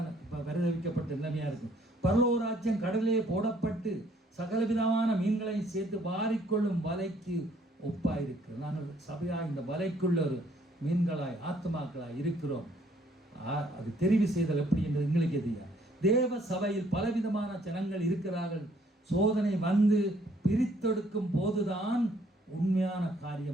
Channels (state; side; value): normal; both; correlation 0.64